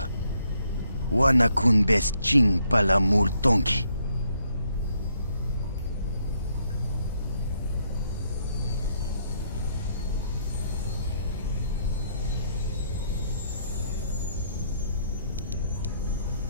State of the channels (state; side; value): inverted; both; correlation -0.73